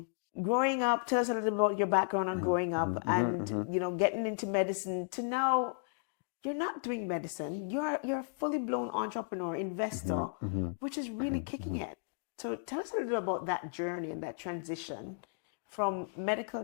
growing up, tell us a little bit about your background on growing up and getting into medicine to now you're not doing medicine. You're a fully blown entrepreneur, investor, which is really kicking it. So tell us a little bit about that journey and that transition from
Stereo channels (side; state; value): right; silent; digital silence